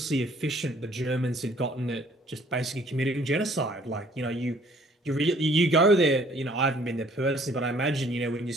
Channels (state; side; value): normal; both; correlation 0.59